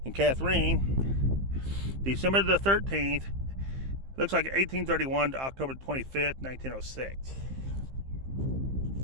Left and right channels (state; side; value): late; left; 15 ms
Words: And Catherine, December the 13th, looks like 1831 to October 25th, 1906.